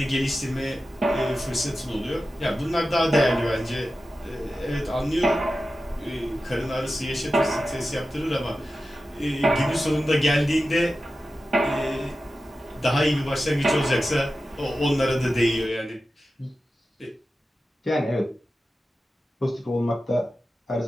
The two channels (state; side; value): normal; both; correlation 0.93